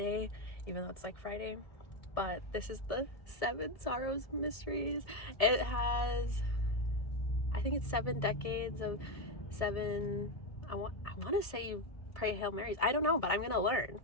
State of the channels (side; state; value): right; late; 1.7 ms